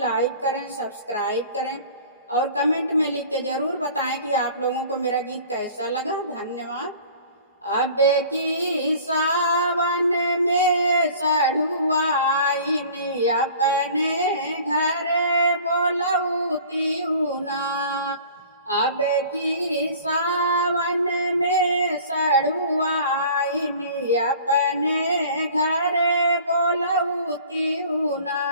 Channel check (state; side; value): inverted; both; correlation -0.46